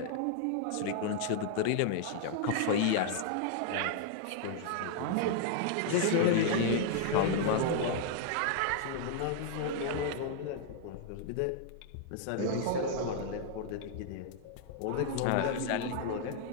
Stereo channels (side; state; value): both; different; correlation 0.00